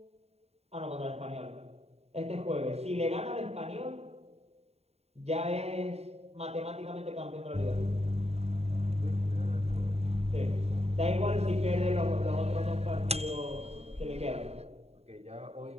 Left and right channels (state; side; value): late; left; 0.30 ms